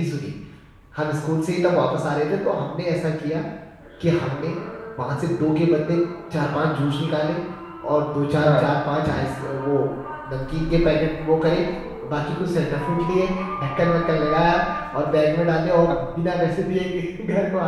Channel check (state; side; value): identical; both; correlation 1.00